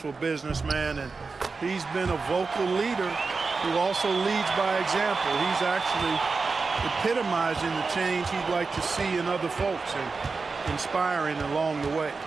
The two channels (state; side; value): quieter; left; 4.3 dB